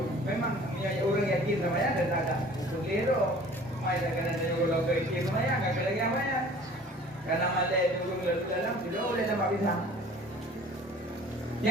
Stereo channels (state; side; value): normal; both; correlation 0.48